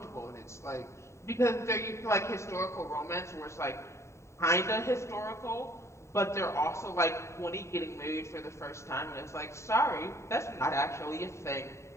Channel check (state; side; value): late; right; 0.14 ms